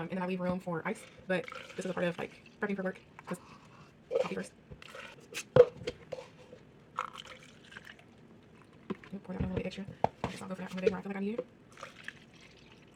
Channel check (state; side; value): identical; both; correlation 1.00